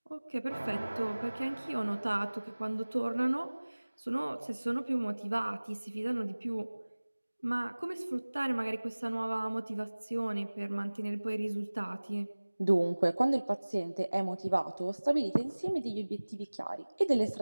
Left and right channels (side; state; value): both; inverted; correlation -1.00